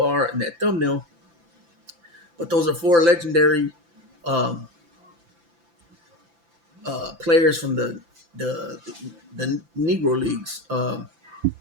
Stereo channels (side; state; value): left; late; 5.9 ms